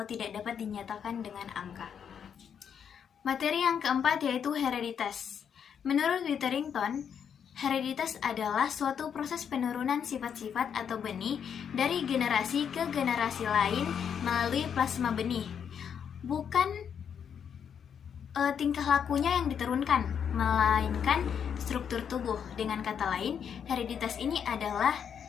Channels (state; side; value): quieter; right; 7.8 dB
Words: tidak dapat dinyatakan dengan angka. Materi yang keempat yaitu hereditas. Menurut Witherington, hereditas adalah suatu proses penurunan sifat-sifat atau benih dari generasi ke generasi lain melalui plasma benih. Bukan tingkah lakunya yang diturunkan, melainkan struktur tubuh. Dengan kata lain, hereditas ini adalah